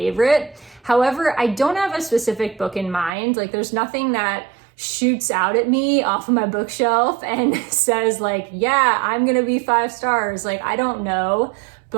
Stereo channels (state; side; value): drops out; left; at 3.1 s